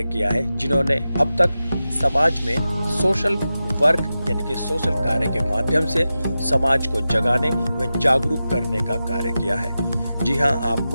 किया है जिन्होंने अब तक समाज में सोशल वर्क यानी कि सोशल कार्य के माध्यम से समाज को जगाने व जागरूक करने का कार्य किया है। जी हाँ,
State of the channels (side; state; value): both; inverted; correlation -0.93